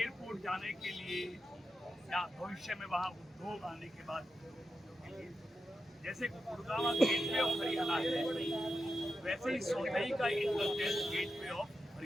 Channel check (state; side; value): normal; both; correlation 0.89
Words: जाने के लिए या भविष्य में वहाँ उद्योग आने के बाद जैसे गुड़गांव गेटवे ऑफ हरियाणा है, वैसे ही सोलई का इंटरचेंज गेटवे ऑफ